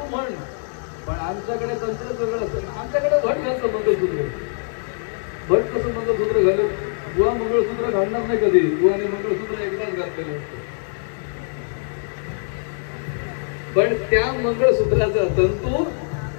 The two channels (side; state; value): right; silent; digital silence